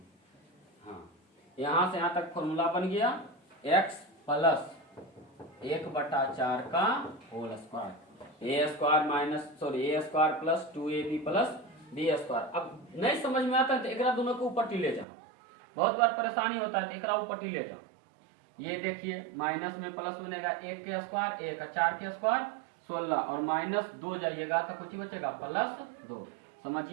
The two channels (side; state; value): left; drops out; at 15.1 s